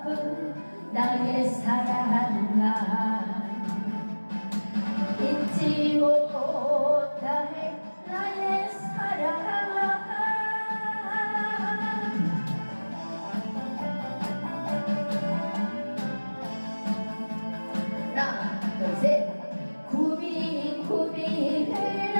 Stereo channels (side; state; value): both; inverted; correlation -1.00